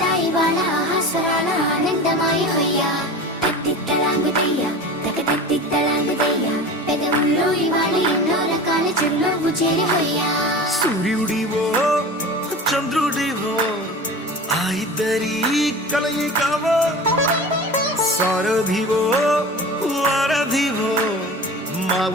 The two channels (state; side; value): normal; both; correlation 0.34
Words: ఇవాళ ఆహాస్వరాల ఆనందమాయ హొయ్యా. తెత్తిద్దలాంగుతయ్యా తెగతెత్తిద్దలాంగుతయ్యా, పెదవుల్లో ఇవాళ ఎన్నో రకాల చిరునవ్వు చేరి హొయ్యా. సూర్యుడివో చంద్రుడివో ఆ ఇద్దరి కలయికవో, సారథివో వారధివో మా